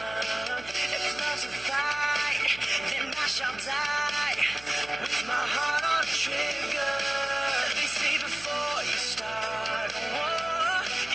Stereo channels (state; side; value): noise; right; hum, 20 dB below the sound